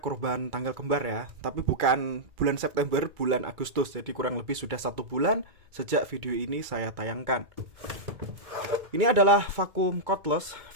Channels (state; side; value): late; left; 2.3 ms